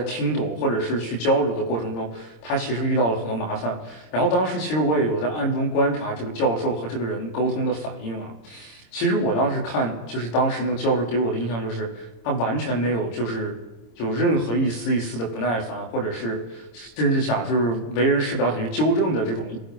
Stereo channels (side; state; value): right; late; 26 ms